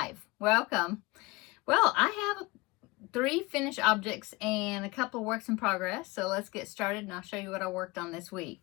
Welcome. Well, I have 3 finished objects and a couple of works in progress, so let's get started and I'll show you what I worked on this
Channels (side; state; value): right; quieter; 23.6 dB